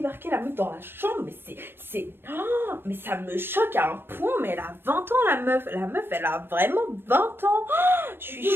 la meuf dans la chambre, mais oh, mais ça me choque à un point, mais elle a 20 ans la meuf, elle a vraiment 20 ans. Oh, je suis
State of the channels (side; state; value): left; late; 0.10 ms